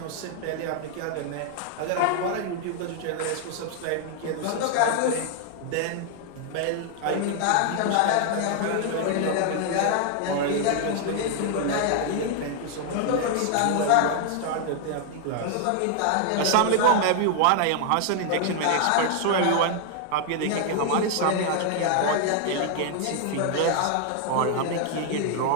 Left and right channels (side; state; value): both; different; correlation 0.00